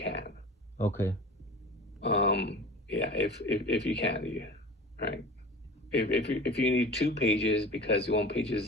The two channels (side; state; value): both; normal; correlation 0.37